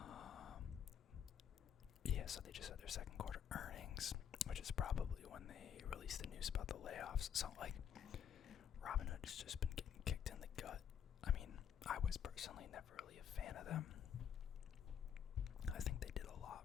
So they just had their second quarter earnings, which is probably when they released the news about the layoffs. So, Robinhood has just been getting kicked in the gut. I was personally never really a fan of them. I think they did a lot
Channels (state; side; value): quieter; right; 8.5 dB